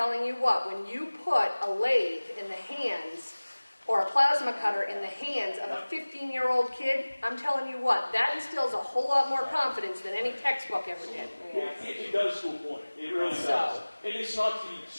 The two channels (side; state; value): both; inverted; correlation -1.00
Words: you what, when you put a lathe in the hands or a plasma cutter in the hands of a 15-year-old kid, I'm telling you what, that instills a whole lot more confidence than any textbook ever did. It does to a point. It really does. And it's not the